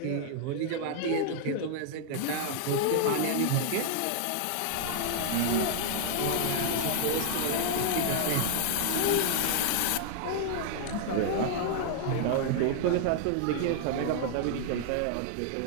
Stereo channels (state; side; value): different; both; correlation 0.00